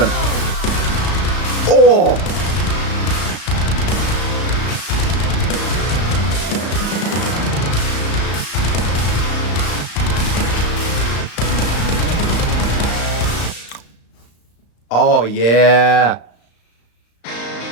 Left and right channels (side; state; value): right; late; 35 ms